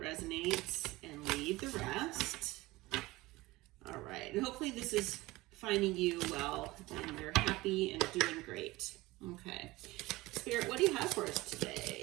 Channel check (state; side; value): quieter; left; 19.6 dB